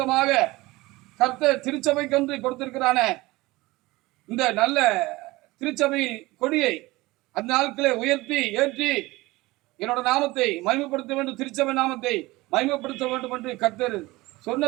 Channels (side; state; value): left; quieter; 20.6 dB